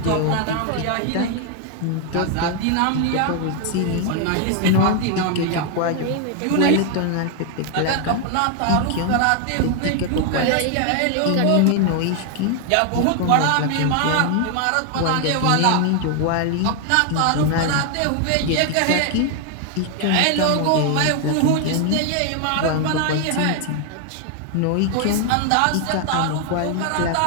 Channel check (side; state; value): both; different; correlation 0.00